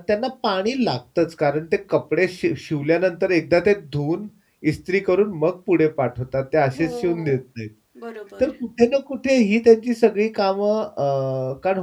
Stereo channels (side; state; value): both; identical; correlation 1.00